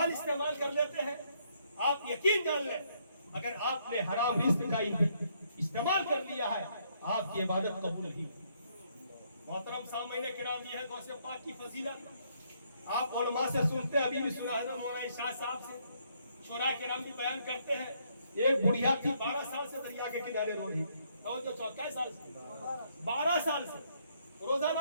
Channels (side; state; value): both; inverted; correlation -0.71